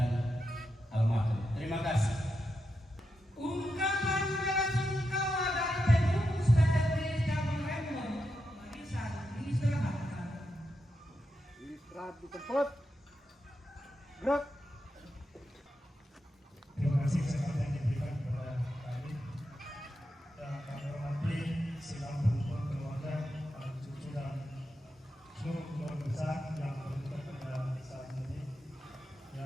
almarhum. Terima kasih. Ungkapan bela-sungkawa dari pengurus PGRI Cabang Rembon. Marisan diistirahatkan. Istirahat di tempat. Gerak. Terima kasih kesempatan yang diberikan kepada kami dan kami hormati sidang berhubung keluarga, para cucu dan seluruh keluarga besar yang berada pada saat ini.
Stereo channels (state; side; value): normal; both; correlation 0.87